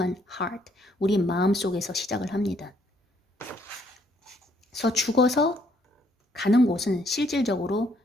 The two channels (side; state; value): both; normal; correlation 0.69